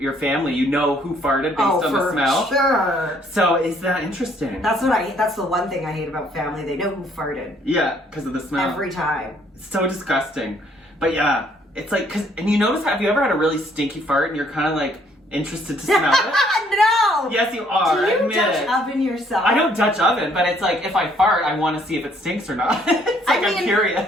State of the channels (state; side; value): normal; both; correlation 0.65